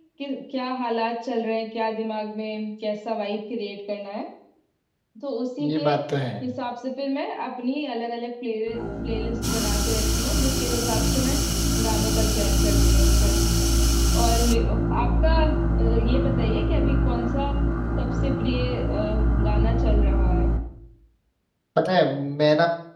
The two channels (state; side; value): identical; both; correlation 1.00